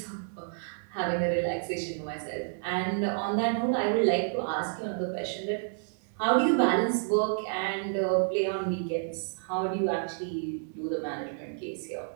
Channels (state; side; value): silent; left; 58 dB below the other